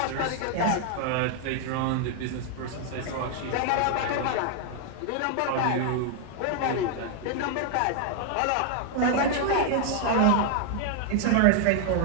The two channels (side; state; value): both; different; correlation 0.00